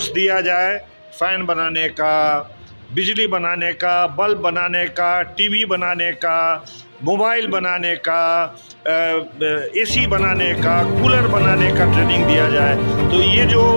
दिया जाए, फैन बनाने का, बिजली बनाने का, बल्ब बनाने का, टीवी बनाने का, मोबाइल बनाने का, AC बनाने का, कूलर बनाने का ट्रेनिंग दिया जाए। तो ये जो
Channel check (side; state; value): both; inverted; correlation -1.00